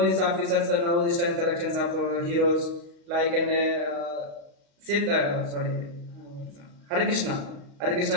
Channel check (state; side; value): late; left; 35 ms